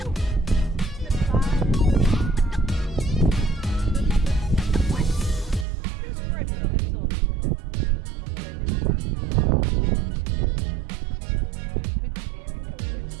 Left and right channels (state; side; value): drops out; left; at 5.7 s